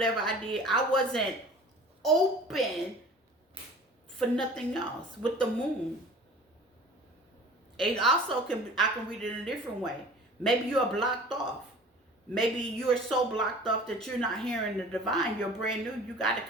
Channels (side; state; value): both; normal; correlation 0.44